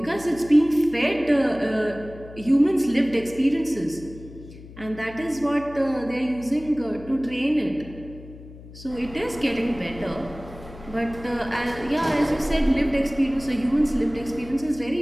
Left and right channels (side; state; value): left; noise; hum, 17 dB below the sound